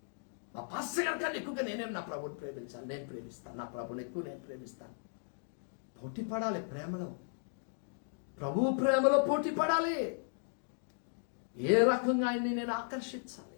నా పాస్టర్ గారి కన్నా ఎక్కువగా నేనేం నా ప్రభుని ప్రేమించాలి. నేను ప్రేమిస్తాను, నా ప్రభుని ఎక్కువ నేను ప్రేమిస్తాను. పోటీ పడాలి ప్రేమలో, ప్రభువు ప్రేమలో పోటీ పడాలి. ఏ రకంగా ఆయన్ని నేను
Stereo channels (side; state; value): right; silent; digital silence